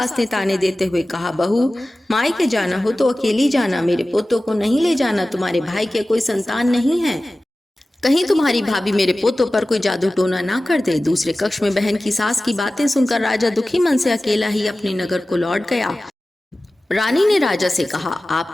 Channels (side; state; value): both; normal; correlation 0.96